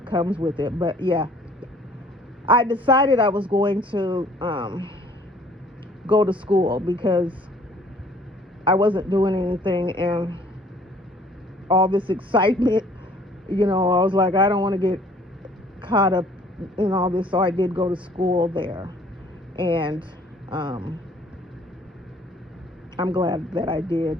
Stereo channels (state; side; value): normal; both; correlation 0.56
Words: comes with it. But yeah, I decided I was going to go to school because I wasn't doing anything, and all this excitement, I was like, I don't want to get caught up in all this. So I did go to school there, and I'm glad that I did.